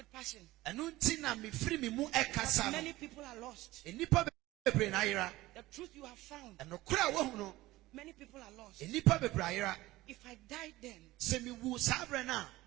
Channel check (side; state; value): left; quieter; 18.0 dB